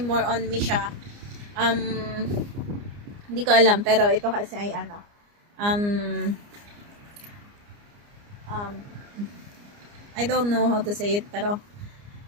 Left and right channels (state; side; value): late; left; 29 ms